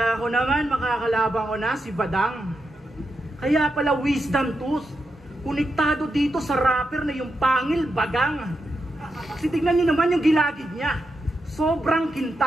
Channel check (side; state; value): both; normal; correlation 0.86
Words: ko naman makakalaban ko na si Badang. Kaya pala wisdom tools, konektado dito sa rapper na yung pangil bagang. Kasi tignan nyo naman yung gilagid niya. Sobrang